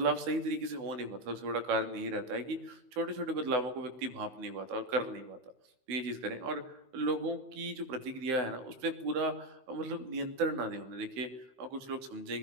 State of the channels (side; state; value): left; late; 15 ms